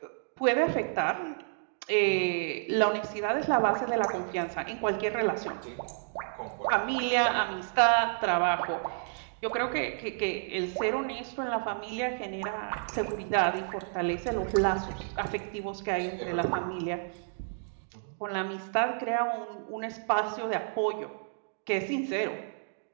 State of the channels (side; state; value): left; silent; digital silence